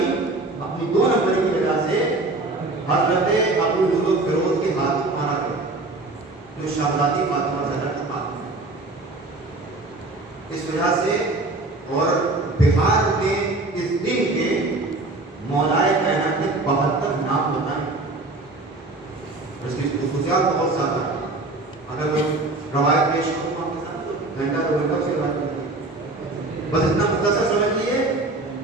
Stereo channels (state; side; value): quieter; left; 3.0 dB